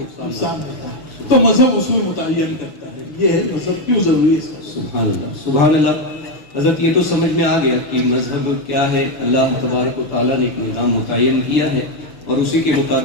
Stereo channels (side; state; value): right; late; 6.4 ms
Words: دیتا ہے. تو مذہب اصول متعین کرتا ہے. یہ ہے مذہب کیوں ضروری ہے. سبحان اللہ. سبحان اللہ. حضرت یہ تو سمجھ میں آ گیا کہ مذہب کیا ہے. اللہ تبارک و تعالیٰ نے ایک نظام متعین کیا ہے اور اسی کے